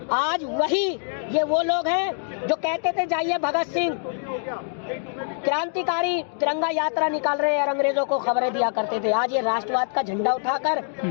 आज वही ये वो लोग हैं जो कहते थे जाइए भगत सिंह क्रांतिकारी तिरंगा यात्रा निकाल रहे हैं और अंग्रेजों को खबरें दिया करते थे। आज ये राष्ट्रवाद का झंडा उठाकर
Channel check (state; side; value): silent; right; digital silence